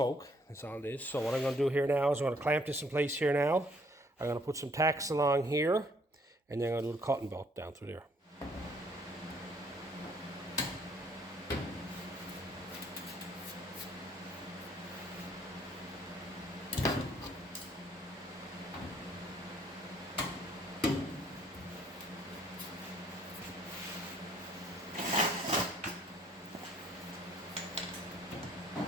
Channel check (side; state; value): both; normal; correlation 0.64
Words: That's all it is. So what I'm going to do here now is I'm going to clamp this in place here now. I'm going to put some tacks along here, and then I'm going to do the cutting belt down through there.